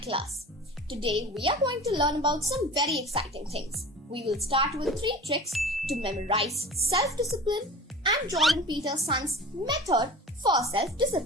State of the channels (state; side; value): normal; both; correlation 0.37